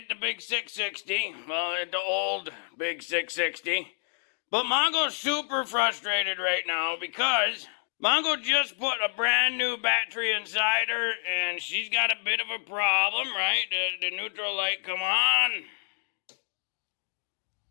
the big 660. Well, it the old big 660. But Mongo's super frustrated right now because Mongo just put a brand new battery inside her, and she's got a bit of a problem, right? The neutral light come on,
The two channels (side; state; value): right; silent; 59 dB below the other